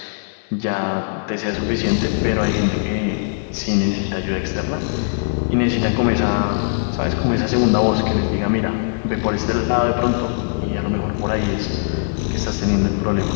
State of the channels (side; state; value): right; silent; 59 dB below the other